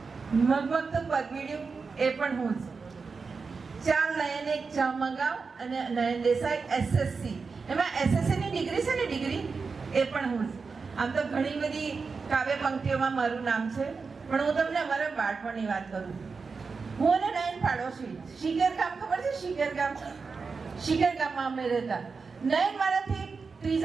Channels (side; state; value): left; quieter; 4.8 dB